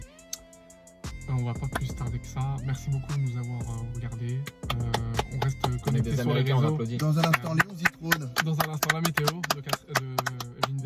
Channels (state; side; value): identical; both; correlation 1.00